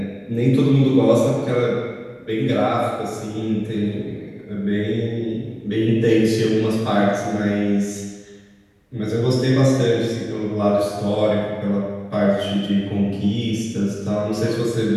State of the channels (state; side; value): identical; both; correlation 1.00